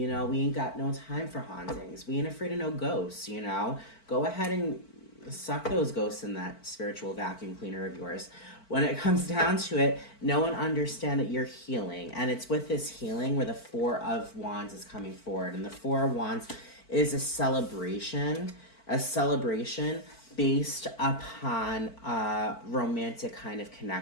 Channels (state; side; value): late; right; 4.5 ms